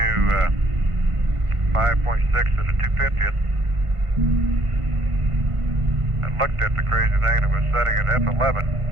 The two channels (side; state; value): left; late; 1.5 ms